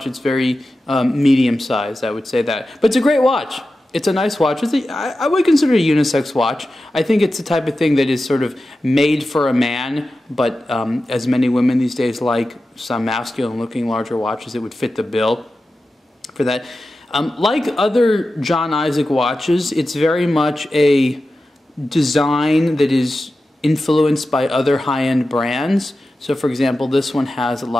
it's very medium sized, I would say that. But it's a great watch. It's a nice watch. I would consider it a unisex watch. I think it's the type of thing that is sort of made for a man, but as many women these days like some masculine looking larger watches, it would fit the bill for that. Like other John Isaac watches, it's very much a design that is influenced by other high-end brands. So for example, this one has a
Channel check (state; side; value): normal; both; correlation 0.93